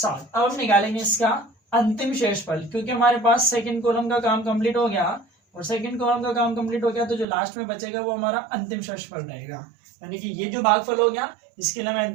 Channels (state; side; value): drops out; left; at 7.2 s